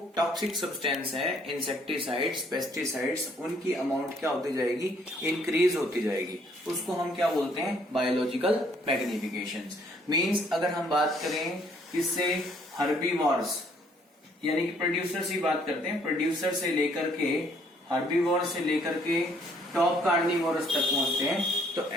टॉक्सिक सब्सटेंस है, इंसेक्टिसाइड्स, पेस्टिसाइड्स, उनकी अमाउंट क्या होती जाएगी, इंक्रीज होती जाएगी। उसको हम क्या बोलते हैं, बायोलॉजिकल मैग्निफिकेशन। मीन्स अगर हम बात करें इससे हर्बीवॉर्स, यानी कि प्रोड्यूसर से बात करते हैं, प्रोड्यूसर से लेकर के हर्बीवॉर से लेकर के टॉप कार्निवोरस तक पहुंचते हैं, तो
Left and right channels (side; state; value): both; normal; correlation 0.64